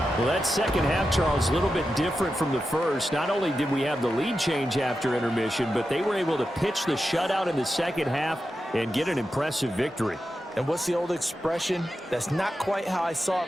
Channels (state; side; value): normal; both; correlation 0.90